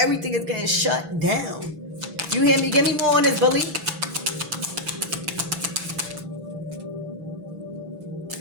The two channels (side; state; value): left; late; 6.1 ms